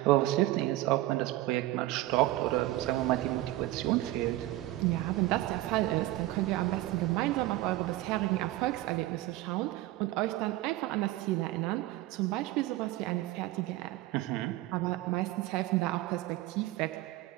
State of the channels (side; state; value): left; quieter; 16.6 dB